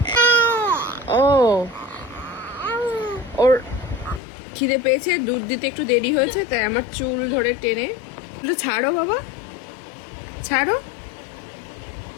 ও ওর খিদে পেয়েছে, দুধ দিতে একটু দেরি হয়েছে, তাই আমার চুল ধরে টেনে। তো ছাড়ো বাবা, ছাড়ো।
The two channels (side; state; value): right; drops out; at 4.2 s